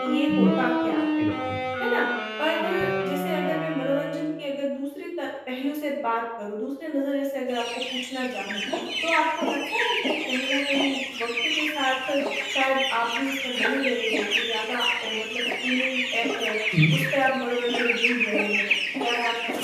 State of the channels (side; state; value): both; identical; correlation 1.00